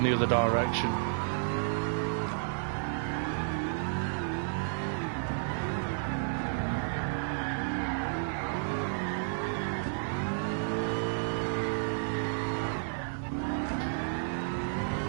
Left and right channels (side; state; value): left; silent; digital silence